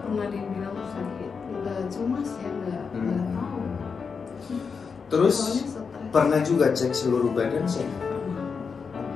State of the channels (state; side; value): quieter; right; 5.6 dB